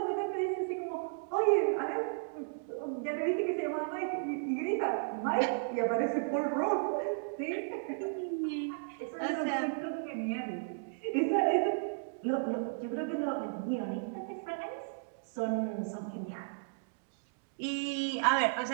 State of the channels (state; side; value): silent; left; digital silence